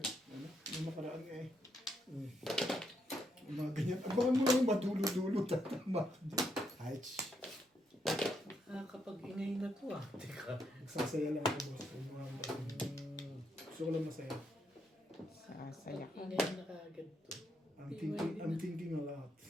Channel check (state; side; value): normal; both; correlation 0.78